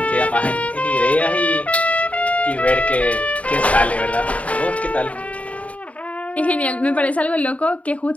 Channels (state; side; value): late; right; 0.067 ms